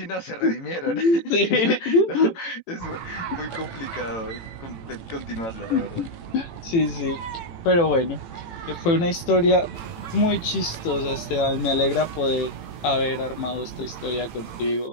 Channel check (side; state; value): right; late; 18 ms